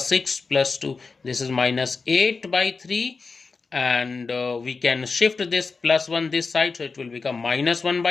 plus 2. This is -8 by 3, and we can shift this plus 1 this side, so it will become -1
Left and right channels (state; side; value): quieter; right; 4.4 dB